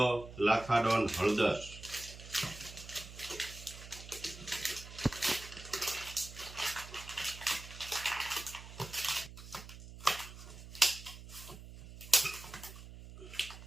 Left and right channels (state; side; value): noise; right; hum, 14 dB below the sound